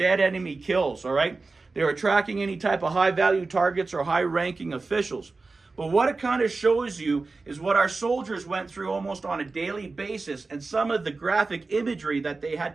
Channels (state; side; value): quieter; left; 3.8 dB